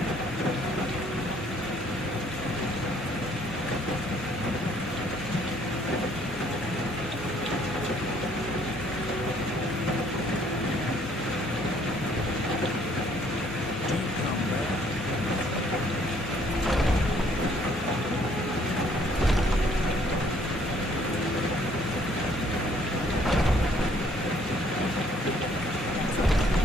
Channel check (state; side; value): normal; both; correlation 0.62